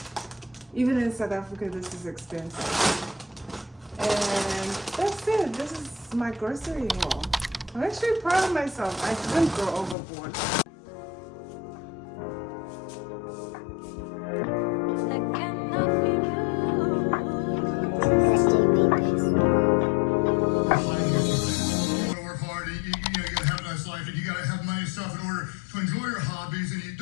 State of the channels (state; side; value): drops out; right; at 10.0 s